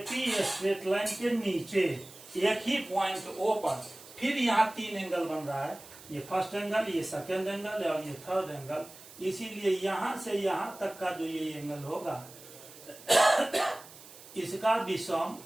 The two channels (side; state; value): right; noise; hiss, 19 dB below the sound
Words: स्ट्रेट लाइन के नीचे एक ही पॉइंट O पर फिर यहाँ 3 एंगल बन रहा है। ये फर्स्ट एंगल, ये सेकेंड एंगल और ये थर्ड एंगल। इसीलिए यहां से यहां तक का जो ये एंगल होगा इसका भी सम